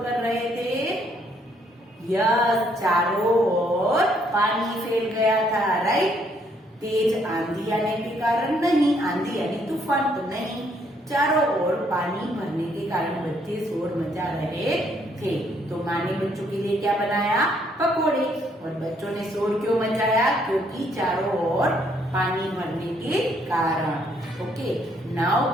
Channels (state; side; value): normal; both; correlation 0.69